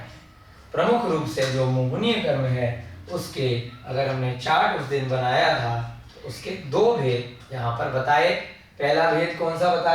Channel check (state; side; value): identical; both; correlation 1.00